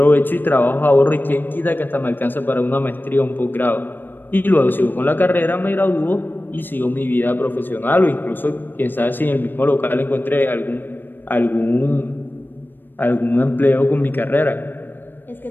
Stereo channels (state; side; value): late; right; 0.093 ms